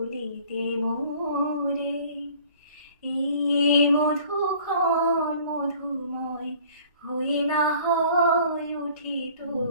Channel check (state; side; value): inverted; both; correlation -0.52